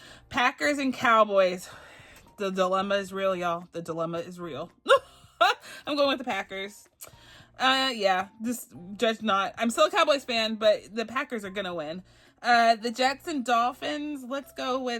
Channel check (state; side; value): identical; both; correlation 1.00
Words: Packers and Cowboys. The dilemma is real, y'all. The dilemma is real. I'm going with the Packers. Yeah, just judge not. I'm still a Cowboys fan, but the Packers are going to win. The Jets and Dolphins. Let's go